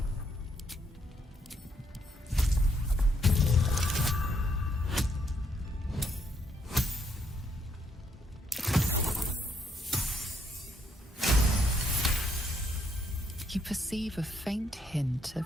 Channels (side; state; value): both; normal; correlation 0.73